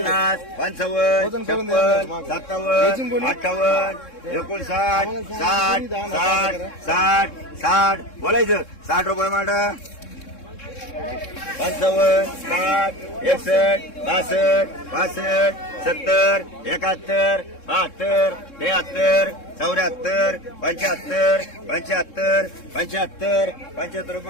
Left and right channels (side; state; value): right; late; 3.7 ms